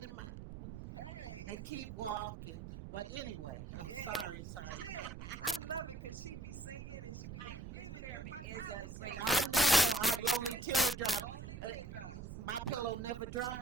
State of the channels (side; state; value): right; noise; rumble, 9 dB below the sound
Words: in mine. Hey. And keep walking. But anyway, sorry. I love it because she be singing and she be getting is a great. I know. Lonely teardrop. Only teardrops. My pillow never